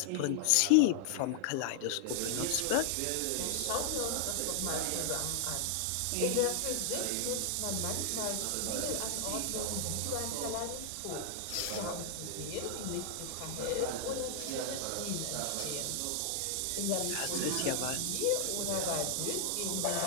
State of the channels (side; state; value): both; different; correlation 0.00